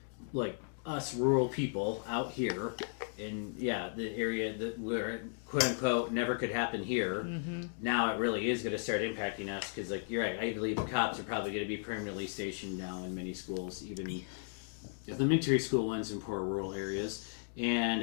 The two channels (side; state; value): right; silent; digital silence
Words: like us rural people out here in, the area that where, quote-unquote, never could happen here. Mm-hmm. Now it really is going to start impacting us because, you're right, I believe cops are probably going to be permanently stationed now in many schools, even elementary school ones in poor rural areas. And